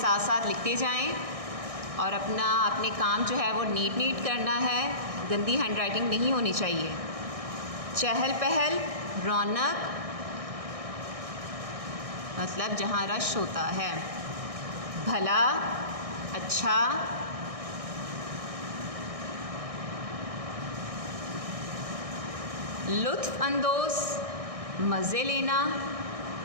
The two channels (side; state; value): left; late; 1.6 ms